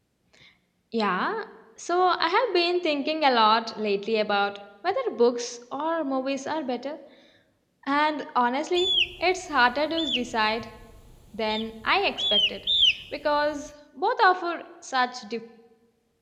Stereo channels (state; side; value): identical; both; correlation 1.00